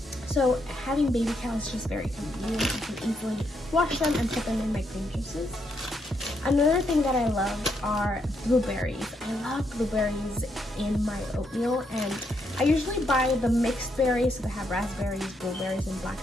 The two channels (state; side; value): normal; both; correlation 0.77